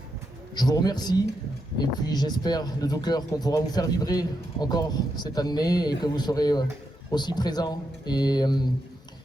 je vous remercie et puis j'espère de tout cœur qu'on pourra vous faire vibrer encore cette année et que vous serez aussi présents et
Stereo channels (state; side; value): normal; both; correlation 0.83